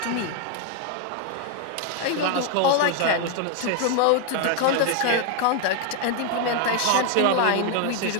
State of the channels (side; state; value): both; different; correlation 0.01